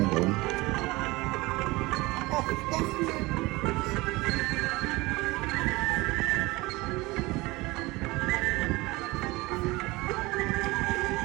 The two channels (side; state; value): left; quieter; 22.0 dB